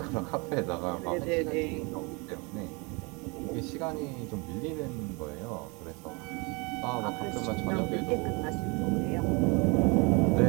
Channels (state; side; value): quieter; left; 29.2 dB